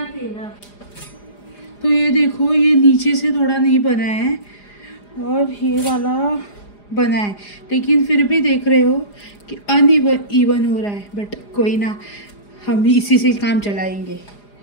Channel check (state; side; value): late; right; 4.9 ms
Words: हैं ना। तो ये देखो ये नीचे से थोड़ा नहीं बना है और ये वाला बना है, लेकिन फिर भी देख रहे हो कि अनइवन हो रहा है। बट कोई ना, हम इसी से काम चलाएंगे।